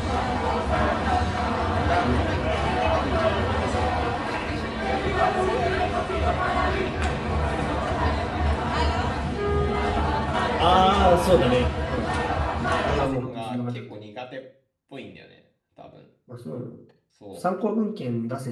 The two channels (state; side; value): identical; both; correlation 1.00